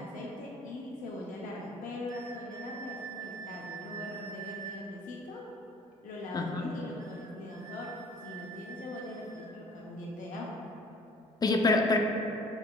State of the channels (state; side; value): normal; both; correlation 0.52